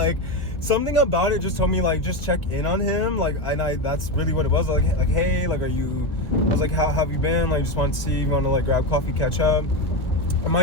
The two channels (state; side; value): late; right; 1.2 ms